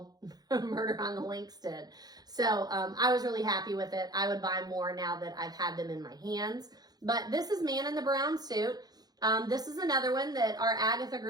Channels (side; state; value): left; late; 0.19 ms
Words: Murder on the Links did. So I was really happy with it. I would buy more now that I've had them in my hands. But this is Man in the Brown Suit. This is another one that our Agatha